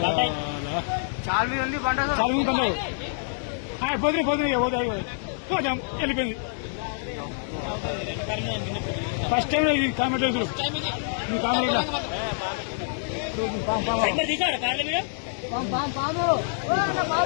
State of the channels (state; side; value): silent; right; 61 dB below the other